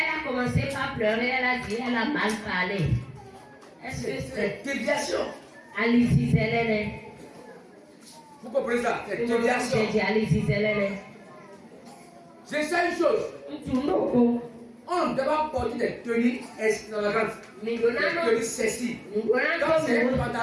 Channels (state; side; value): identical; both; correlation 1.00